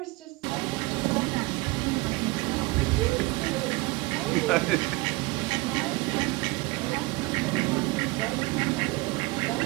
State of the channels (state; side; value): quieter; left; 23.5 dB